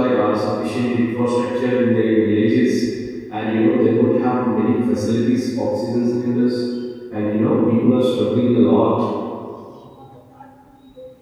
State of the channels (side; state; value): both; identical; correlation 1.00